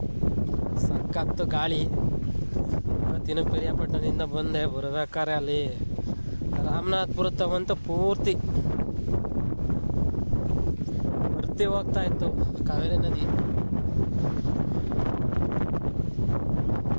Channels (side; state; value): both; inverted; correlation -1.00